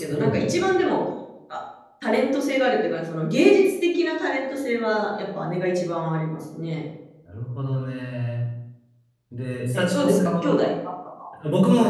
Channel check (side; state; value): both; identical; correlation 1.00